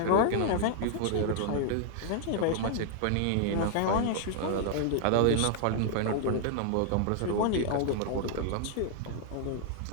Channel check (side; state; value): both; different; correlation 0.00